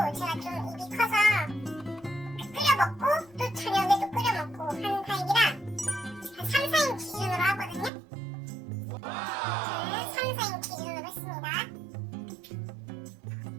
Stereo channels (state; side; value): drops out; left; at 7.9 s